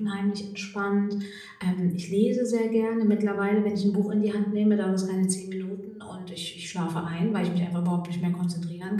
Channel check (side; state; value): both; identical; correlation 1.00